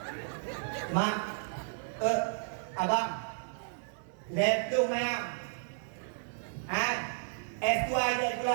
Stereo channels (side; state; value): left; silent; 56 dB below the other